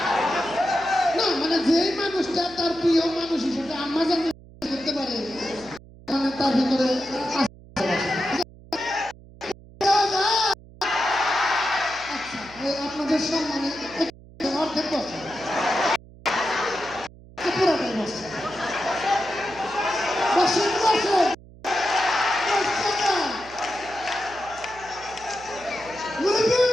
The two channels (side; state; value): right; noise; hum, 21 dB below the sound